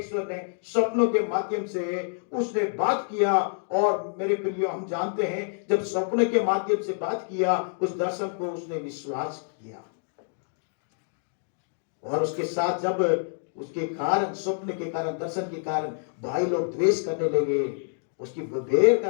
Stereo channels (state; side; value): silent; right; digital silence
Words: ने स्वप्नों के माध्यम से उसने बात किया। और मेरे प्रियो, हम जानते हैं जब स्वप्न के माध्यम से बात किया, उस दर्शन को उसने विश्वास किया। और उसके साथ जब उसके कारण, स्वप्न के कारण, दर्शन के कारण भाई लोग द्वेष करने लगे, उसकी बेर